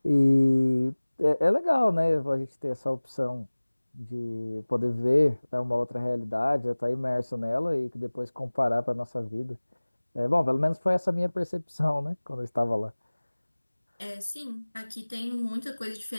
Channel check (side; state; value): both; inverted; correlation -1.00